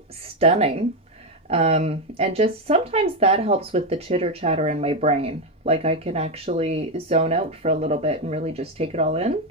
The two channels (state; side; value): normal; both; correlation 0.08